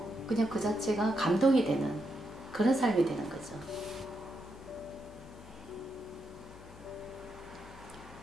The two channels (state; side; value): noise; left; hum, 18 dB below the sound